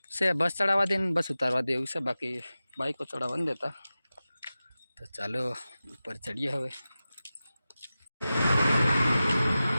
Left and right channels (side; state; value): both; inverted; correlation -0.95